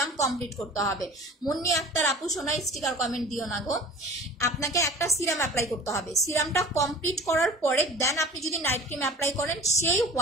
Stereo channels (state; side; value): normal; both; correlation 0.42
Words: কমপ্লিট করতে হবে। মুন্নি আক্তার আপু সোনা স্টিকার কমেন্ট দিও না গো, আপনাকে একটা সিরাম অ্যাপ্লাই করতে হবে। সিরামটা কমপ্লিট করার পরে দেন আপনি যদি নাইট ক্রিম অ্যাপ্লাই করেন, সেই